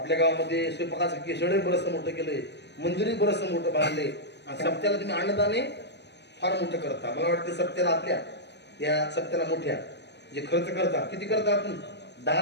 गावामध्ये स्वयंपाकाचं केसडे बरंचसं मोठं केलंय, मंदिरही बरंचसं मोठं बांधलंय. आणि सप्त्याला तुम्ही अन्नदाने फार मोठं करता. मला वाटतं सप्त्याला आपल्या या सप्त्याला मोठ्या जे खर्च करता, किती करता आपण? 10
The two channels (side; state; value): right; late; 0.50 ms